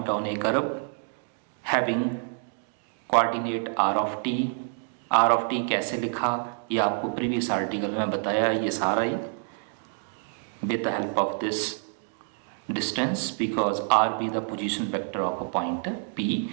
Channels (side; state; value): left; silent; 57 dB below the other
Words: on a curve having coordinate R of T. R of T कैसे लिखा ये आपको प्रीवियस आर्टिकल में बताया. ये सारा ही with the help of this distance, because r be the position vector of a point p